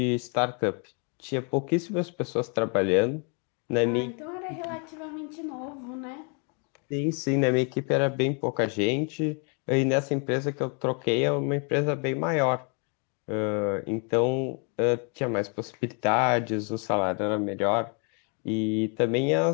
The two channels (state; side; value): quieter; right; 37.1 dB